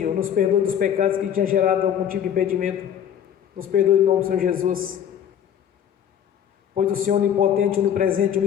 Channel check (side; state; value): right; quieter; 9.3 dB